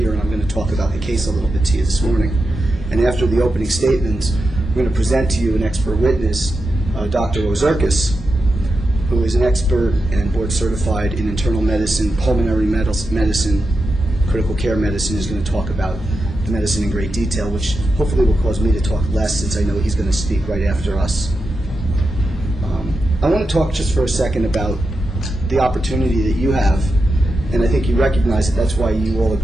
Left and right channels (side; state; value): both; normal; correlation 0.89